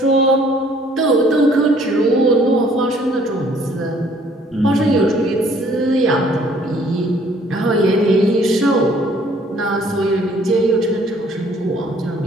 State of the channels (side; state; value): both; normal; correlation 0.60